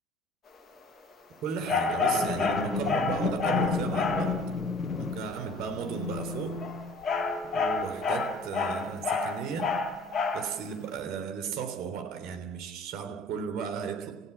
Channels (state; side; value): normal; both; correlation 0.48